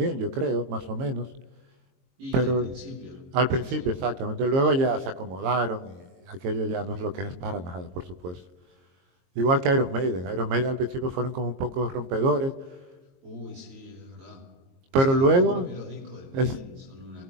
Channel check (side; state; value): left; late; 22 ms